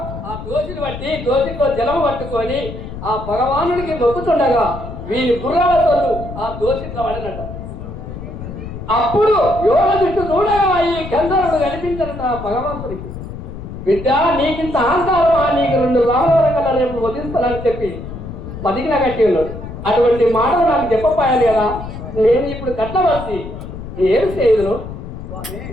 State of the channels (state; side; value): noise; left; rumble, 10 dB below the sound